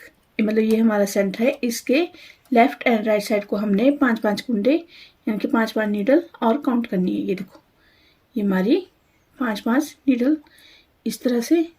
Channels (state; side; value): identical; both; correlation 1.00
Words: मतलब ये हमारा सेंटर है, इसके लेफ्ट एंड राइट साइड को हमने 5-5 कुंडे यानी कि 5-5 नीडल और काउंट करनी है। ये देखो ये हमारी 5-5 नीडल इस तरह से,